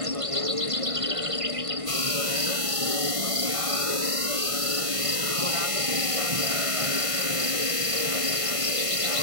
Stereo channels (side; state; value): left; late; 1.5 ms